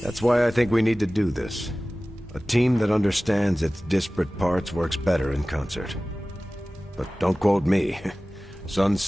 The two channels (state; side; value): normal; both; correlation 0.97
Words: That's why I think we need to do this. A team that understands its disparate parts works better in concert. But don't quote me. Sun